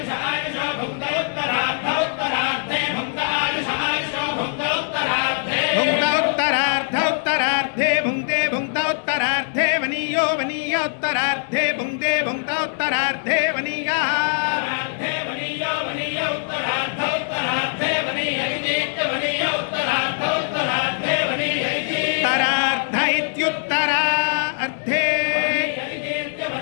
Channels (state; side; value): silent; right; digital silence